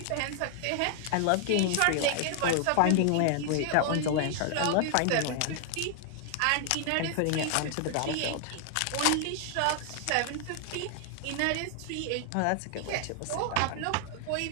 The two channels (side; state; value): both; different; correlation 0.00